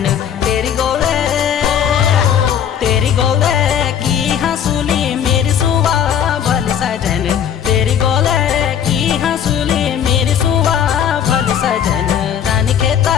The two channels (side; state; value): right; quieter; 8.9 dB